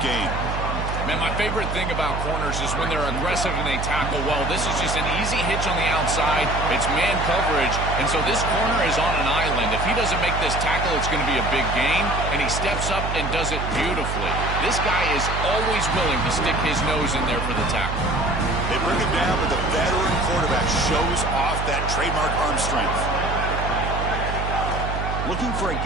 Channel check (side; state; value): right; noise; hum, 4 dB below the sound